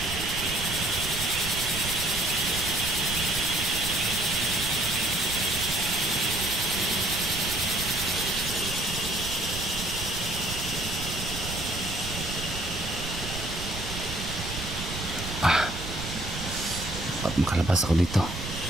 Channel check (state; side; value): noise; right; rumble, 7 dB below the sound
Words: Ba't makalabas ako dito?